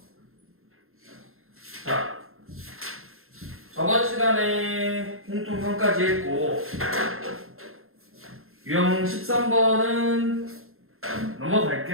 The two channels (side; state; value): left; late; 0.61 ms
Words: 자, 저번 시간에 공통형까지 했고 유형 13번은